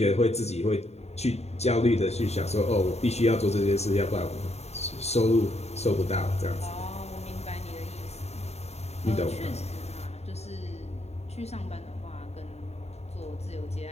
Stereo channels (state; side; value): late; right; 0.31 ms